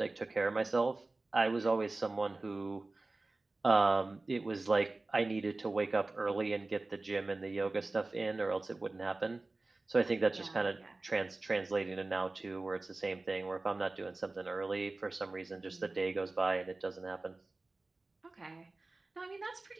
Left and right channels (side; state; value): left; quieter; 3.2 dB